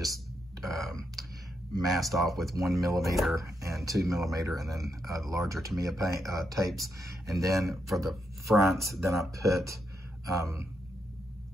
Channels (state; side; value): normal; both; correlation 0.82